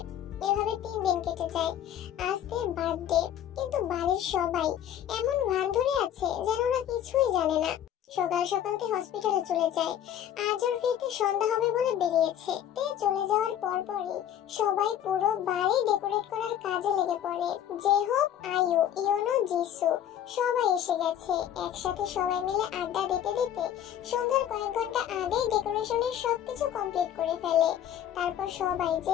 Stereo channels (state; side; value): quieter; right; 10.5 dB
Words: এভাবে 3 দিন কেটে যায়। আজ তের বার্থডে, কিন্তু বাড়ির সবাই এমন ভান ধরে আছে যেন ওরা কিছুই জানে না। সকাল সকাল তে হসপিটালে চলে যায়। আজ ওর ফিরতে সন্ধ্যা হবে বলে বেরিয়েছে। তে চলে যাওয়ার পরপরই সবাই পুরো বাড়ি ডেকোরেট করার কাজে লেগে পড়ে। যে হোক, আয়ু, ইয়োনো, জিসু সবাই এসে গেছে। একসাথে সবাই মিলে আড্ডা দিতে দিতে সন্ধ্যার কয়েক ঘন্টা আগেই ডেকোরেশনের সবকিছু কমপ্লিট করে ফেলে। তারপর সবাই